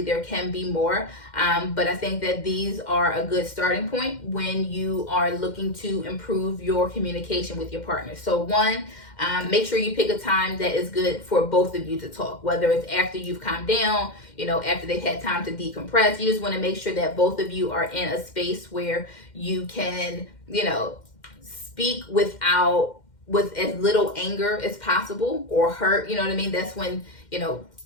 can be more, but I think that these are a good starting point when you are looking to improve your communication with your partner. So 1, make sure you pick a time that is good for both of you to talk, whether it's after you've calmed down, after they've had time to decompress. You just want to make sure that both of you are in a space where you can, speak with as little anger as possible or hurt. You know what I mean? That's when,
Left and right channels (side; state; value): right; late; 2.1 ms